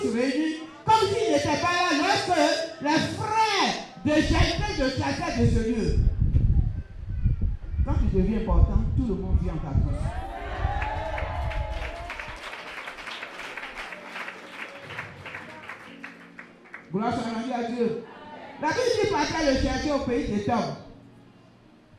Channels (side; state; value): both; identical; correlation 1.00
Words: réunis, comme s'ils n'étaient pas là lorsque les frères de Jephthé te chassaient de ce lieu. Quand tu deviens important, tout le monde vient en ta cause. Gloire soit rendue à Dieu. La Bible dit partait le chercher au pays de Tom.